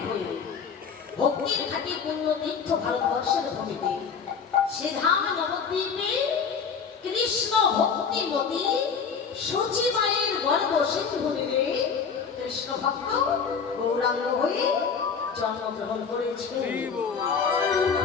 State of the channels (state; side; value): quieter; right; 6.1 dB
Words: হয়ে ভক্তির ঘাটি পূর্ণ তীর্থ ভারতবর্ষের ভূমিতে সে ধাম নবদ্বীপে কৃষ্ণ ভক্তিমতী সচিবায়ের গর্ব সেতু ভূমিতে কৃষ্ণ ভক্ত গৌরাঙ্গ হয়ে জন্মগ্রহণ করেছে।